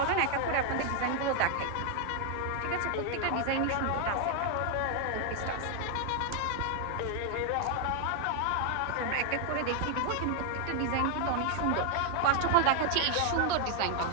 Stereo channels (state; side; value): different; both; correlation 0.00